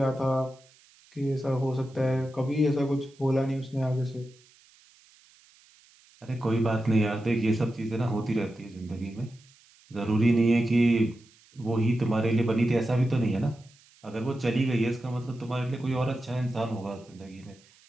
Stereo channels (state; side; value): noise; right; hiss, 29 dB below the sound